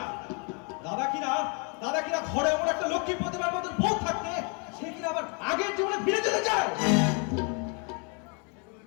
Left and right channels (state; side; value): quieter; right; 35.9 dB